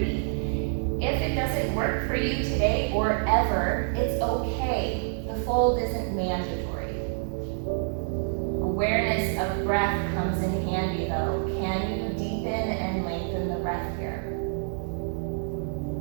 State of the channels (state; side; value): silent; left; digital silence